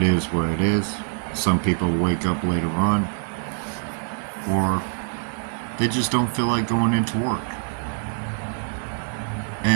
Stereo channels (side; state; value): left; silent; 62 dB below the other